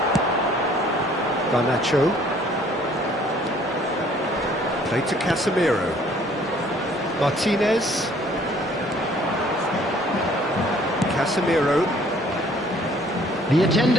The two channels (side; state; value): both; normal; correlation 0.58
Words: Garnacho. Played to Casemiro. Martinez. Casemiro. The